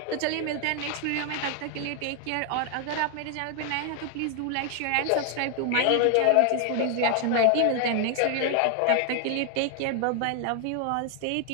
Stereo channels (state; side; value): different; both; correlation 0.00